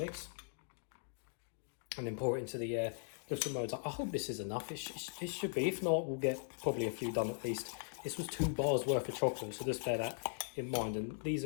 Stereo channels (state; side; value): silent; right; digital silence